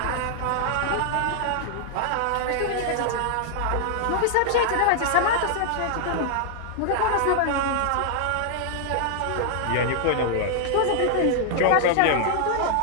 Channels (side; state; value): both; different; correlation 0.00